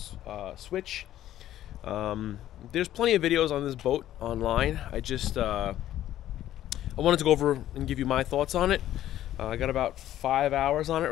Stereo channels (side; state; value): right; quieter; 12.7 dB